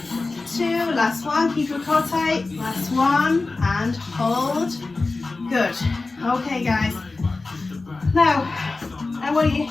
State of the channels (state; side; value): quieter; right; 3.6 dB